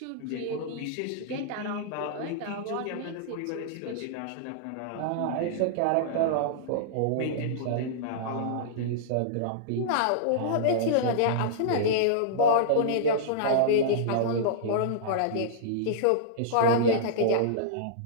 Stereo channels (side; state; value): both; different; correlation -0.02